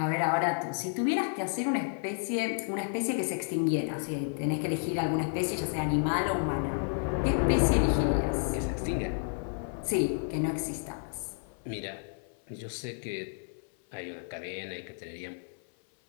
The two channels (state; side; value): silent; right; 57 dB below the other